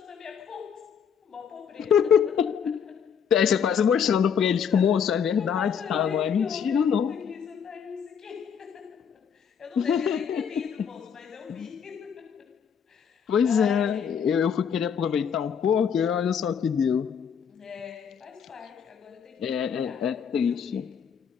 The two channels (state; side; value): quieter; right; 7.4 dB